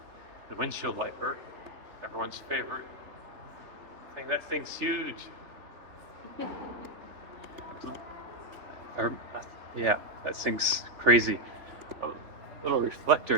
the windshield wiper, everyone's favorite thing. That thing's huge. Yeah, that thing's crazy. A little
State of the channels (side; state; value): left; late; 3.4 ms